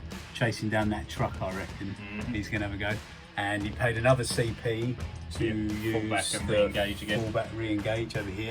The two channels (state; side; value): identical; both; correlation 1.00